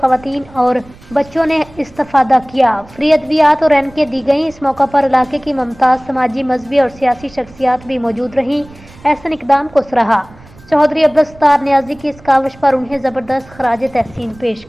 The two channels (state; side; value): noise; right; rumble, 23 dB below the sound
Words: और बच्चों ने इस्तेफादा किया। फ्री अद्वियात और एनके दी गई। इस मौका पर इलाके की मुमताज समाजी, मजहबी और सियासी शख्सियात भी मौजूद रहीं। ऐसे इक़दाम को सराहा। चौधरी अब्दुल सत्तार नियाजी की इस काविश पर उन्हें जबरदस्त खराज तहसीन पेश